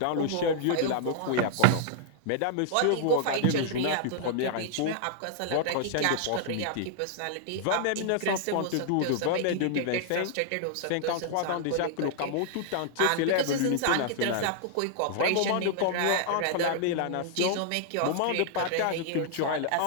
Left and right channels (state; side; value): different; both; correlation -0.01